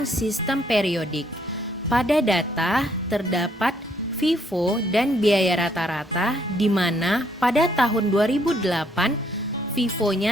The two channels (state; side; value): normal; both; correlation 0.69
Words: sistem periodik. Pada data terdapat FIFO dan biaya rata-rata, di mana pada tahun 2008